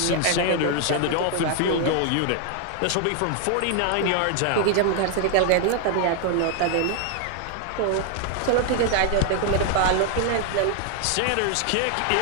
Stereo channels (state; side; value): different; both; correlation 0.00